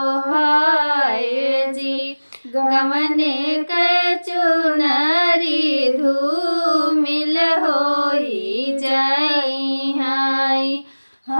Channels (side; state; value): both; inverted; correlation -1.00